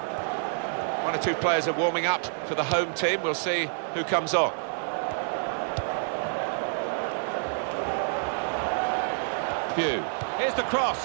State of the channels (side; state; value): left; silent; digital silence